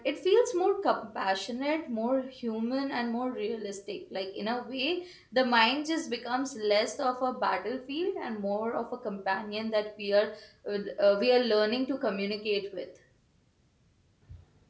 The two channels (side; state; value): both; identical; correlation 1.00